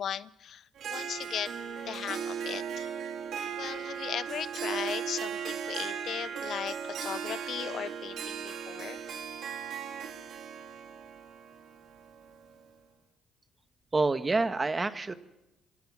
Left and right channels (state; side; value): normal; both; correlation 0.75